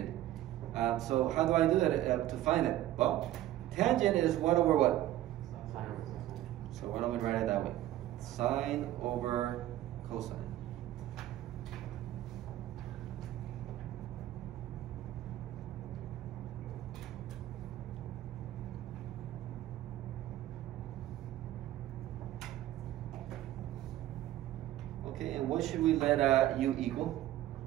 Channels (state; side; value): quieter; left; 13.8 dB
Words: So how do I do it to find it? Well, tangent is 1 over what? So why don't we write it that way? Sine over cosine. Okay, and what should we let u equal?